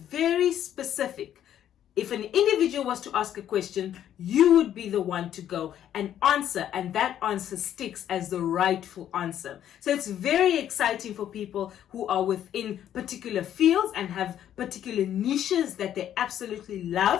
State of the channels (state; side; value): quieter; right; 10.7 dB